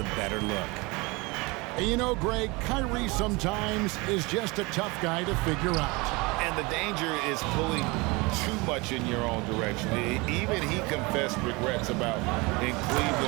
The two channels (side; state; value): left; quieter; 25.4 dB